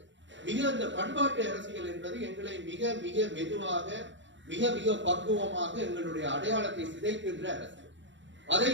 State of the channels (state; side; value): late; left; 0.54 ms